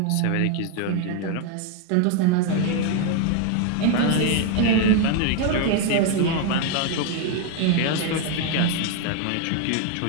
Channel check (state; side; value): different; both; correlation 0.00